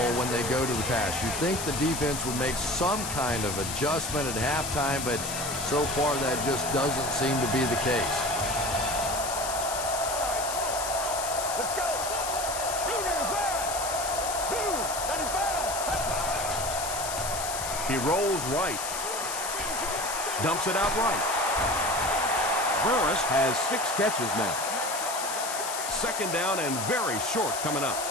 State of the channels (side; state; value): left; noise; hiss, 5 dB below the sound